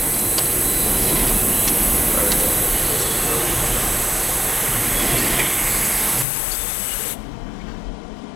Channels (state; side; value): drops out; right; at 6.2 s